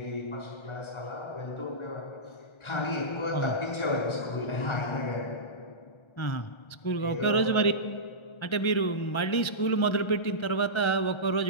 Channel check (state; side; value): late; right; 1.3 ms